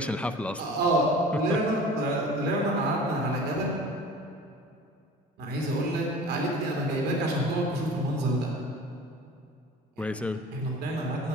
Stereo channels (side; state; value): both; normal; correlation 0.41